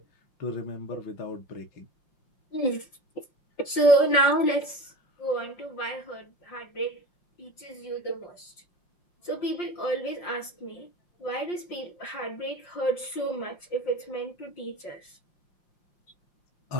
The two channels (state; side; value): late; right; 5.6 ms